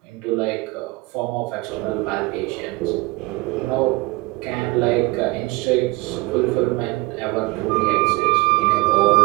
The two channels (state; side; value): quieter; left; 22.8 dB